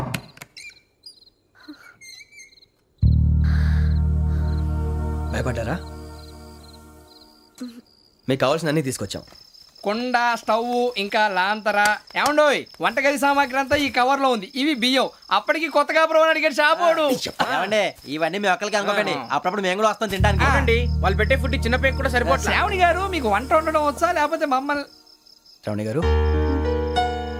భయపడ్డారా? మీకు కావాల్సిన అన్ని తీసుకొచ్చాం. కుండ, స్టవ్, ఇంకా లాంతర. ఏమండోయ్, వంటగది సామాగ్రి అంతా ఈ కవర్ లో ఉంది. ఇవి బియ్యం. అప్పటికి కొత్తగా బ్రౌన్ అడిగాడు షాపోడు. ఏమండి, ఇవన్నీ మీ ఒక్కరికి అనుకోకండి, అప్పుడప్పుడు మేము కూడా వస్తాం తినడానికి. అవునండి, వాళ్ళు పెట్టే ఫుడ్ చిన్న పేరు కూడా సరిపోతుంది. శ్రావణి గారు, మీకు వంట వండడం వచ్చా లేకపోతే మమ్మల్ని? శ్రావణి గారు,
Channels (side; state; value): both; identical; correlation 1.00